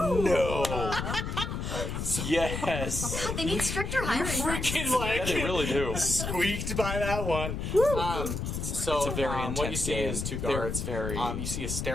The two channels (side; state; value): left; noise; rumble, 3 dB below the sound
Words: Yes. They need stricter hiring Freaking Yeah, they really do. squeaked by that one. So It's a very what you intense see game. is 2 They're guards. very- You see a